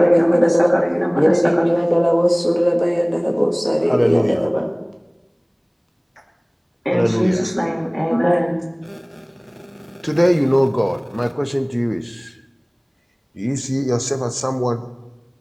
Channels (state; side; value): identical; both; correlation 1.00